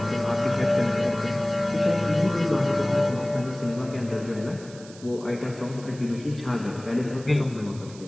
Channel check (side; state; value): right; noise; hiss, 20 dB below the sound